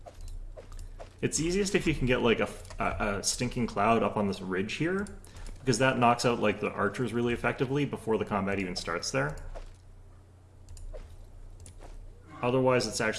It's easiest if you can get like a stinking cloud up on this ridge here, because that knocks out like the archers really effectively before the combat even starts there. Otherwise, it's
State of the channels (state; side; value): identical; both; correlation 1.00